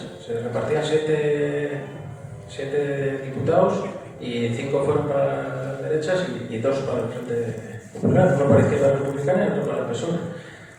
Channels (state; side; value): identical; both; correlation 1.00